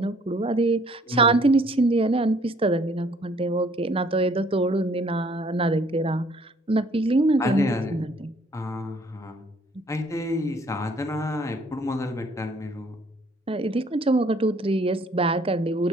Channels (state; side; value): normal; both; correlation 0.60